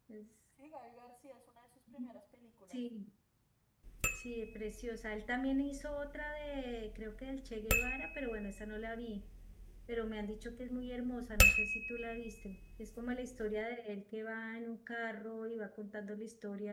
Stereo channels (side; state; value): both; identical; correlation 1.00